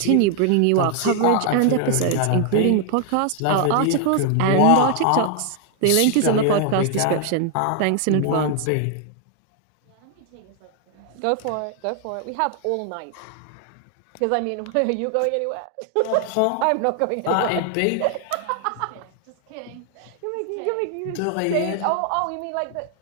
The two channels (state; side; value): different; both; correlation 0.00